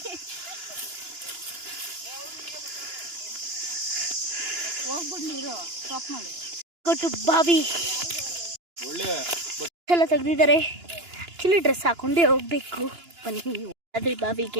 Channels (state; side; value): late; left; 2.9 ms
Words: ಹೋಗ್ಬಿಟ್ಟು ನೀರು ಸ್ಟಾಪ್ ಮಾಡಿ ಕೊಟ್ಟು ಬಾವಿ ಎಲ್ಲ ತೆಗ್ದಿದ್ದಾರೆ. ಆಕ್ಚುಲಿ ಡ್ರೆಸ್ ಹಾಕೊಂಡೇ ಹೋಗ್ಬೇಕು. ಬನ್ನಿ ಅದ್ರ